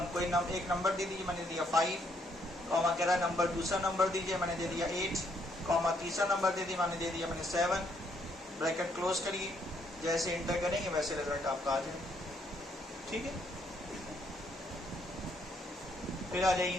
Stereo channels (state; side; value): normal; both; correlation 0.71